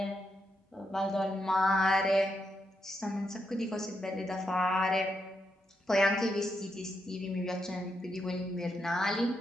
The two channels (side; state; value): both; normal; correlation 0.82